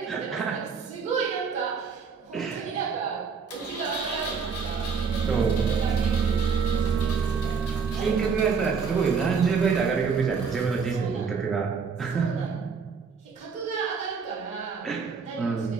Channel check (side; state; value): left; quieter; 5.6 dB